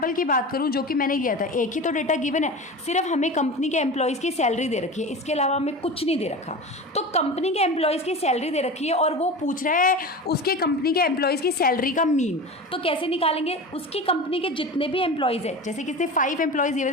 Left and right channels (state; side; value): normal; both; correlation 0.30